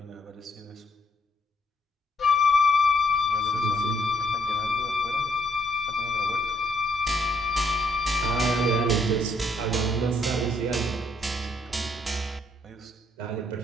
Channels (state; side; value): normal; both; correlation 0.71